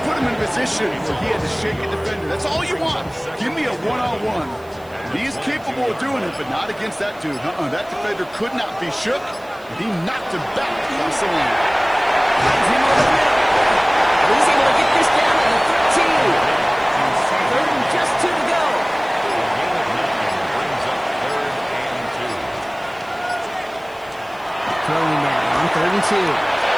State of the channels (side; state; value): right; noise; hiss, 28 dB below the sound